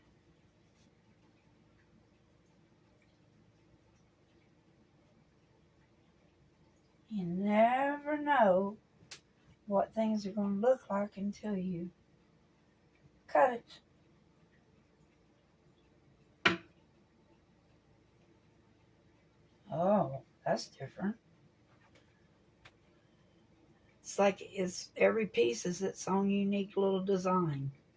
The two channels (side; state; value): both; identical; correlation 1.00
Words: You never know what things are going to look like until you cut it. Oh, that's different. It's like every piece is its own unique little design.